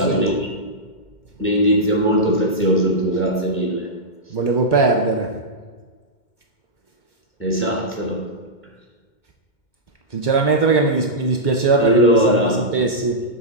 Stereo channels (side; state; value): right; late; 2.2 ms